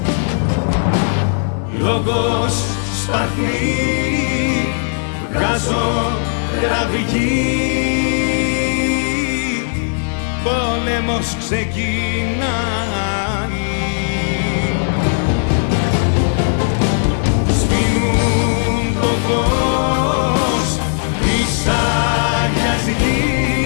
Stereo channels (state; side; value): silent; right; 61 dB below the other